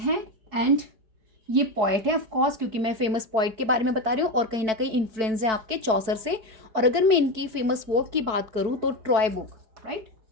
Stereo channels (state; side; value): late; left; 4.6 ms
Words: एंड ये पॉइट है ऑफ कोर्स, क्योंकि मैं फेमस पॉइट के बारे में बता रही हूँ और कहीं ना कहीं इन्फ्लुएंस है आपके चौसर से। और अगर मैं इनकी फेमस वर्क की बात करूँ तो Troy book, right,